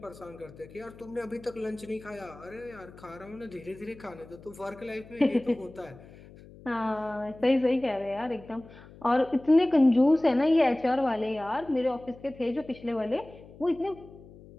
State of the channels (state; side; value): noise; left; hum, 20 dB below the sound